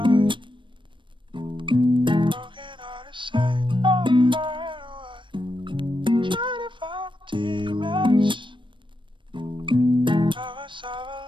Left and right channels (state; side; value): late; left; 0.24 ms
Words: Broken hearted, say I'm right away. Trying to find my teammates. Now it's